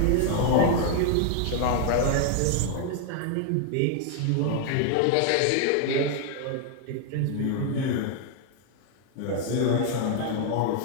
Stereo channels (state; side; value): different; both; correlation 0.00